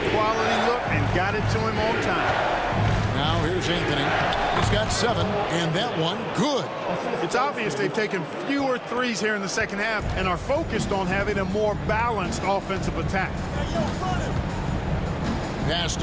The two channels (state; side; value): identical; both; correlation 1.00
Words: quality look and got it to him on time. Now here's Anthony. He's got 7, and that one good. It's obvious they've taken fewer threes here in the second half and are focused on having a more balanced offensive attack. Pass